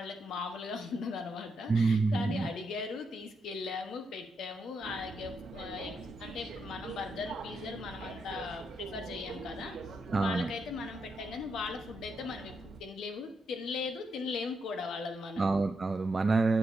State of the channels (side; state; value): both; normal; correlation 0.81